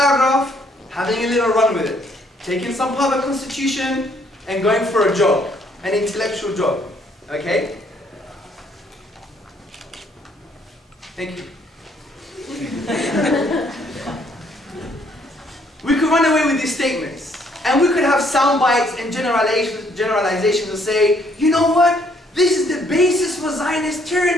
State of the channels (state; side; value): normal; both; correlation 0.67